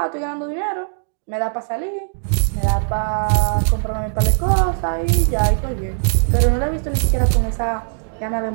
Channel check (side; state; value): left; silent; digital silence